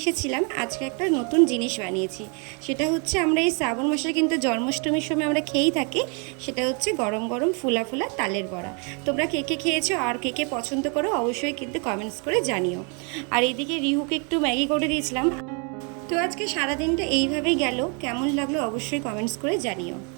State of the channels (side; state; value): left; quieter; 35.8 dB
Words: এসেছিলাম, আজকে একটা নতুন জিনিস বানিয়েছি। সেটা হচ্ছে, আমরা এই শ্রাবণ মাসে কিন্তু জন্মাষ্টমীর সময় আমরা খেয়েই থাকি, সেটা হচ্ছে গরম গরম ফুলা ফুলা তালের বড়া। তোমরা কে কে খেয়েছো আর কে কে পছন্দ করো অবশ্যই কিন্তু কমেন্টস করে জানিও। আর এইদিকে রিহুকে একটু ম্যাগি করে দিয়েছিলাম। তো আজকে সারাদিনটা এইভাবেই গেল, কেমন লাগলো অবশ্যই কমেন্টস করে জানিও।